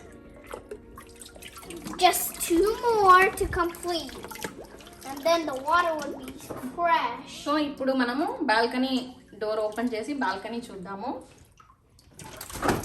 Just 2 more to complete. And then the water will be fresh. So ఇప్పుడు మనము balcony door open చేసి balcony చూద్దాము.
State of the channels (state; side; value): identical; both; correlation 1.00